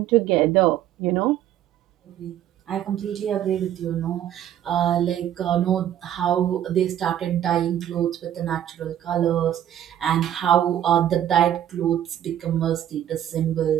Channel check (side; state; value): left; quieter; 11.1 dB